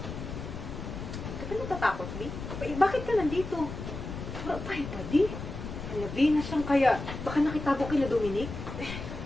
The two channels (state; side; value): noise; left; rumble, 8 dB below the sound